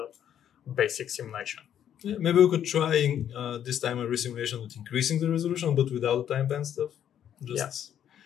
basic simulation. Yeah, maybe we could try this time a resimulation with increasing the resolution, but without the time band stuff.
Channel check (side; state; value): right; quieter; 9.9 dB